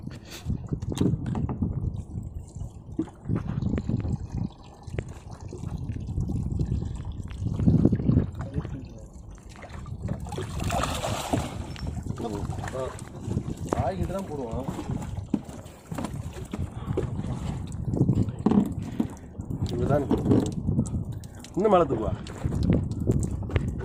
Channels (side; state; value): both; identical; correlation 1.00